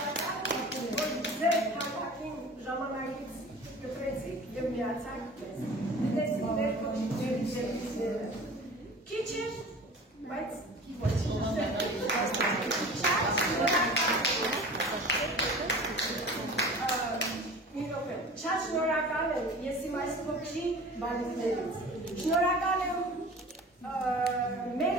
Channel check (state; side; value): normal; both; correlation 0.40